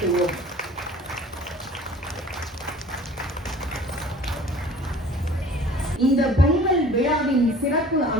இந்த பொங்கல் விழாவின் சிறப்பு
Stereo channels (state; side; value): normal; both; correlation 0.48